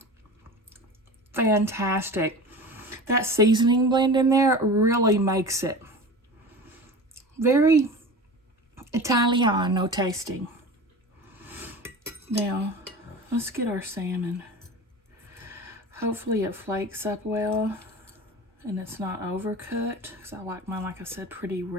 Fantastic. that seasoning blend in there really makes it very Italiano tasting. Now, let's get our salmon. Hopefully it flakes up well and it's not overcooked, because I like mine, like I said, pretty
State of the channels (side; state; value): both; normal; correlation 0.33